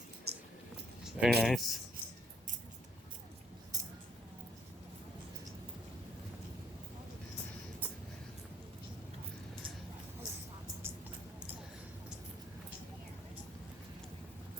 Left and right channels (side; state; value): both; normal; correlation 0.67